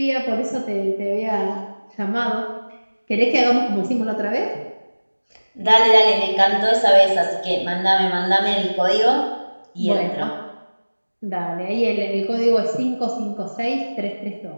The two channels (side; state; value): both; inverted; correlation -1.00